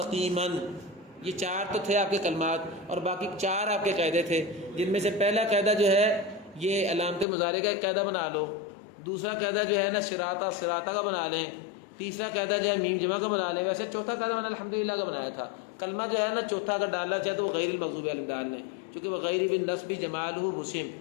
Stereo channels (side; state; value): right; drops out; at 7.2 s